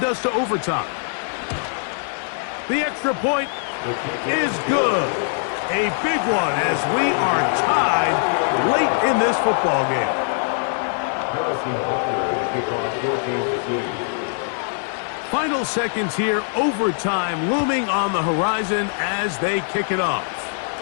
us to overtime. The extra point is good. A big one as we are tied late in this football game. Final seconds here, overtime looming on the horizon as they kick it off.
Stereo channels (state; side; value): silent; right; 64 dB below the other